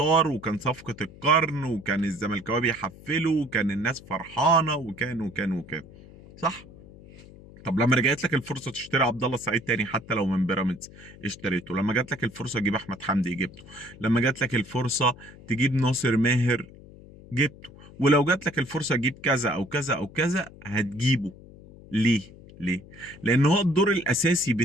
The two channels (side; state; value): left; noise; hum, 20 dB below the sound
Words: وكان صفقه القرن، وكان الزملكاويه بيحفلوا، وكان الناس فرحانه، وكان صح. طب لما رجعت لك الفرصه تشتري عبد الله السعيد تاني حتى لو من بيراميدز، اشتريته. لما جات لك الفرصه تجيب احمد حمدي، جبته. لما جات لك الفرصه تجيب ناصر ماهر، جبته. ولو جات لك الفرصه تجيب كذا او كذا او كذا، هتجيبه. ليه؟ ليه؟ لان هو الدور الاساسي